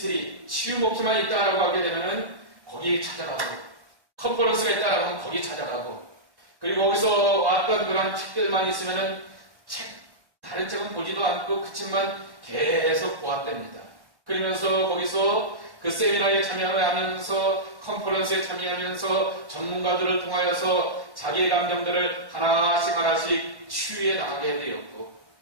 치유 목회만 있다라고 하게 되면은 거기 찾아가고 컨퍼런스가 있다라고 하면 거기 찾아가고 그리고 거기서 왔던 그런 책들만 있으면은 다른 책은 보지도 않고 그 책만 계속 보았답니다. 그러면서 거기서 그 세미나에 참여하면서 컨퍼런스에 참여하면서 전문가들을 통하여서 자기의 감정들을 하나씩 치유해 나가게 되었고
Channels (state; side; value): late; left; 1.1 ms